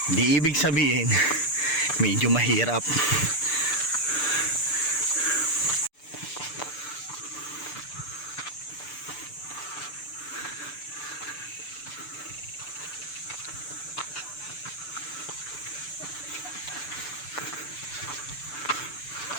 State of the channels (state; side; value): late; right; 6.8 ms